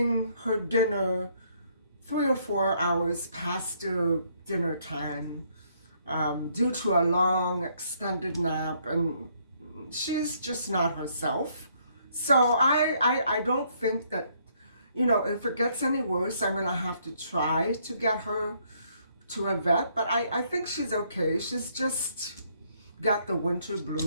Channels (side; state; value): both; inverted; correlation -0.69